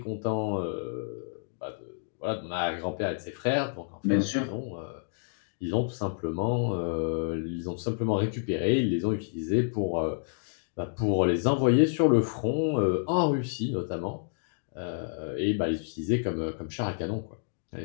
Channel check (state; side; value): silent; right; digital silence